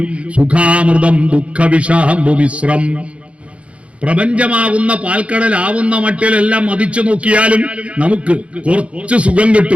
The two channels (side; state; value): left; late; 0.062 ms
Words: സുഖാമൃതം ദുഃഖവിഷാംബുമിശ്രം. പ്രപഞ്ചമാകുന്ന പാൽക്കടലാവുന്ന മട്ടിലെല്ലാം മതിച്ചു നോക്കിയാലും നമുക്ക് കുറച്ച് സുഖം